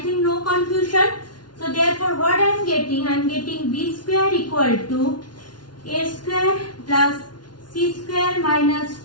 no confusion. So therefore what I am getting? I am getting B square equal to A square plus C square minus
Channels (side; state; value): right; late; 0.70 ms